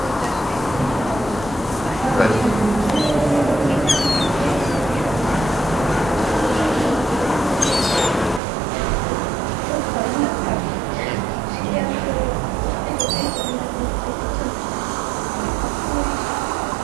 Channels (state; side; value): drops out; left; at 8.4 s